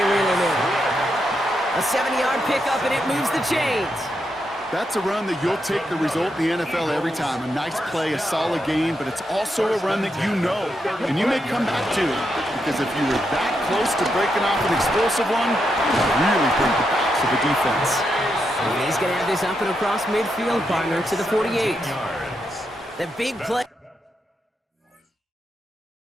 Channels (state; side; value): normal; both; correlation 0.83